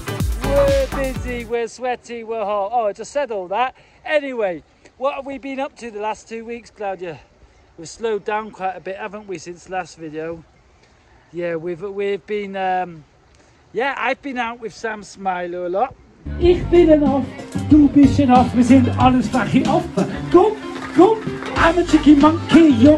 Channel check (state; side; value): identical; both; correlation 1.00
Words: We're busy, we're sweaty, we're hot. Oh, I just said all that. Anyway, what have we been up to the last 2 weeks, Claudia? We've slowed down quite a bit, haven't we, since the last video? Yeah, we've been, I've been out with Sam Smiler a lot. Ich bin ein Aff, du bist ein Aff, wir sind alles flache Affen. Komm, I'm a cheeky monkey,